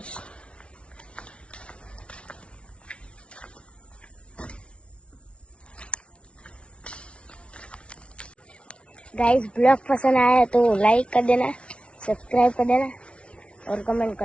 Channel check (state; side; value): late; right; 0.060 ms